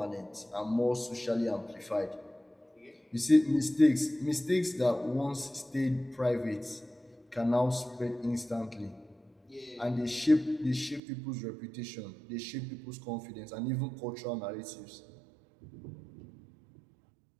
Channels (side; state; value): left; drops out; at 11.0 s